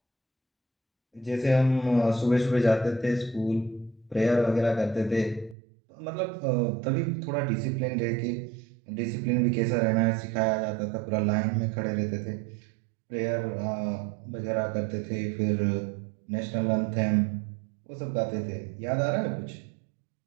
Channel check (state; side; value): drops out; left; at 5.6 s